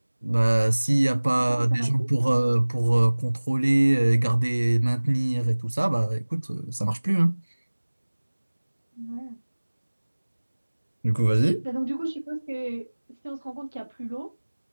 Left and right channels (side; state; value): both; inverted; correlation -1.00